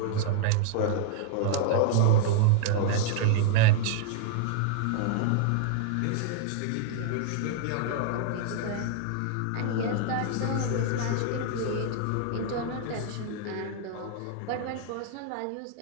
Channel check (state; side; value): different; both; correlation -0.01